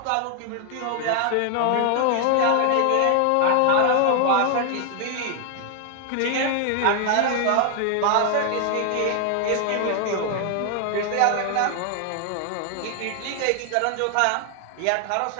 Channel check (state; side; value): different; both; correlation 0.00